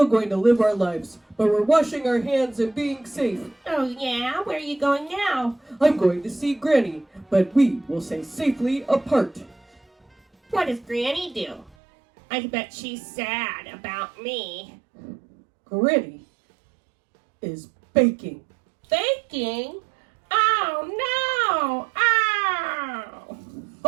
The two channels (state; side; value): drops out; left; at 11.8 s